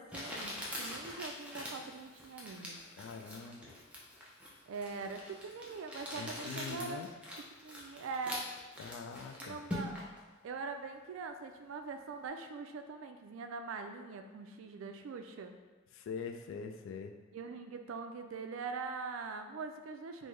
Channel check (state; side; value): normal; both; correlation 0.03